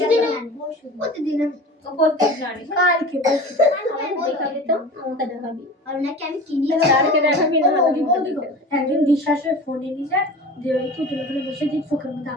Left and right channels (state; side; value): normal; both; correlation 0.36